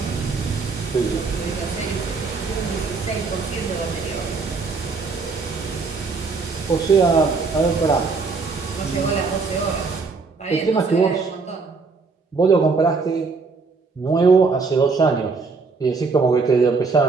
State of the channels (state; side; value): quieter; left; 4.4 dB